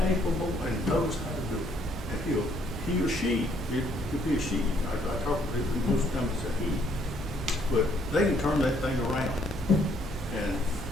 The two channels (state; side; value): normal; both; correlation 0.66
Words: and knows how to do it. And he or she, it could be a she. I talk to people, most times it's a he. But they can turn that thing around. And